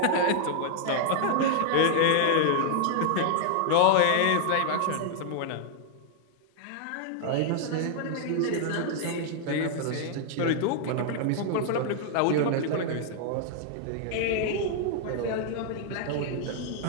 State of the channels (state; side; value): different; both; correlation 0.00